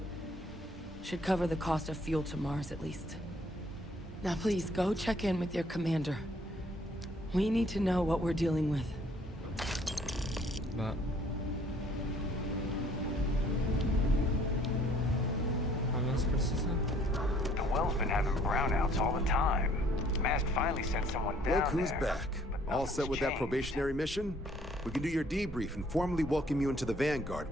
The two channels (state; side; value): normal; both; correlation 0.60